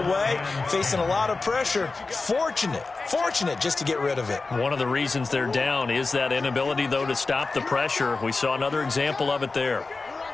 facing a lot of pressure. Fortunate just to get rid of it. One of the reasons they're down is that inability, though, to stop the pressure. We saw another example of it there.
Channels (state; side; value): quieter; right; 3.8 dB